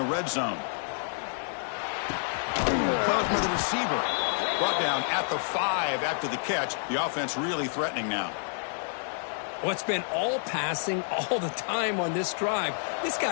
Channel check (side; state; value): right; silent; 59 dB below the other